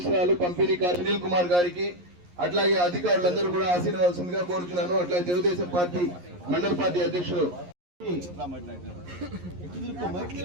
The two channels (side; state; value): left; late; 11 ms